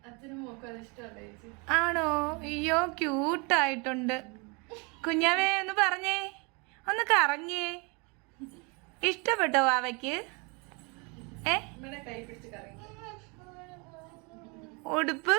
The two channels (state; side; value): quieter; left; 30.8 dB